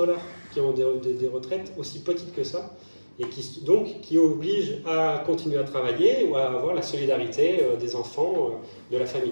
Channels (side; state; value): both; inverted; correlation -1.00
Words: qui ont des retraites aussi petites que ça, et qui obligent à continuer à travailler ou à avoir la solidarité des enfants, de la